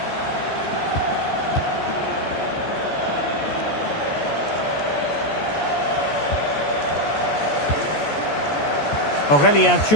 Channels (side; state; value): right; late; 14 ms